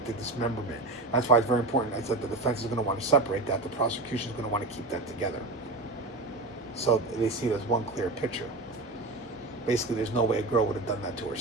the dismemberment. That's why it's very important. I said the defense is going to want to separate that. The prosecution is going to want to keep that together, so they see it as one clear picture. Basically, there's no way a girl would have done that to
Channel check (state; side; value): quieter; left; 3.1 dB